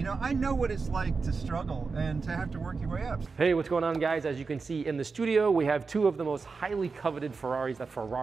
know, I know what it's like to struggle and to have to work your way up. Hey, what's going on, guys? As you can see in the studio, we have two of the most highly coveted Ferraris that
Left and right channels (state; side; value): quieter; left; 4.6 dB